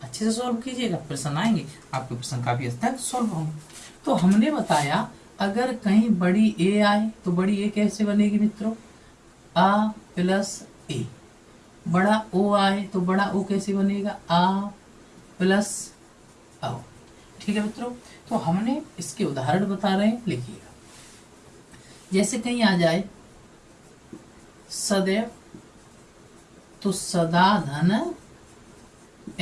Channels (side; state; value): both; identical; correlation 1.00